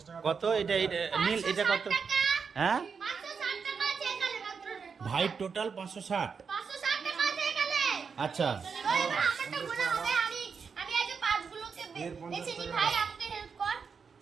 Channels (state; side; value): quieter; left; 5.8 dB